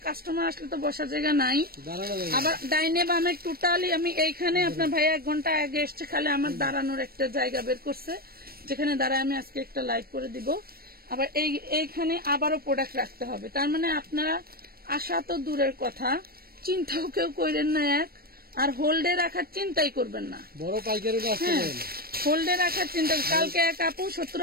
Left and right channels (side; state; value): left; late; 0.44 ms